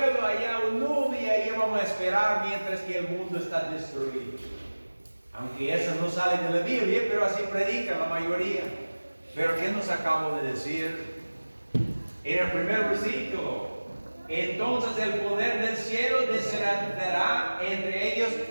allá a un nube y ahí vamos a esperar mientras que el mundo está destruido. Aunque eso no sale de la Biblia, pero así predica la mayoría. Pero ¿qué nos acabo de decir? En el primer versículo, entonces el poder del cielo descenderá entre ellos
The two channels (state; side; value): inverted; both; correlation -1.00